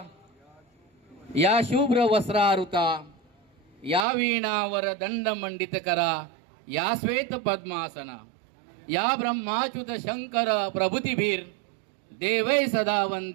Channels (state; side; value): drops out; left; at 4.0 s